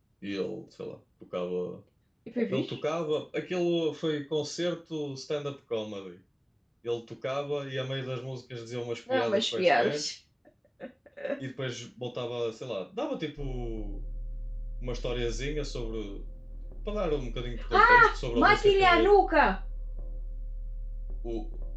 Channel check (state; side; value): identical; both; correlation 1.00